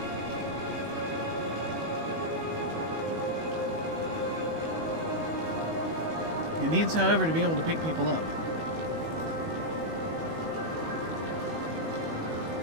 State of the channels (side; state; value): left; late; 19 ms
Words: It needs, however, to be able to pick people up.